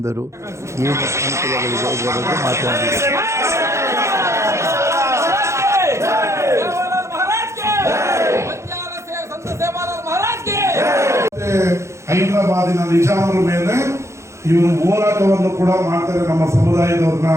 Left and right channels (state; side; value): late; left; 0.14 ms